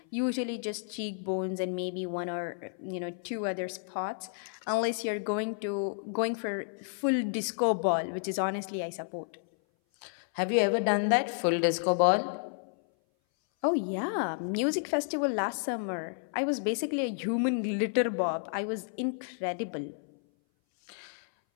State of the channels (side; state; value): right; silent; 57 dB below the other